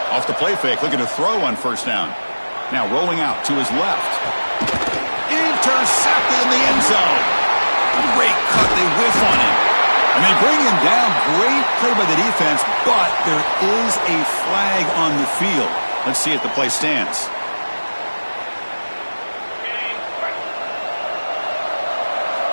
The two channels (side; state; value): both; inverted; correlation -1.00